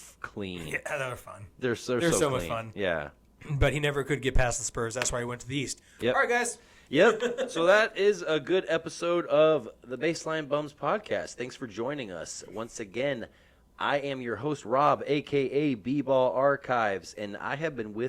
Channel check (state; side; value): identical; both; correlation 1.00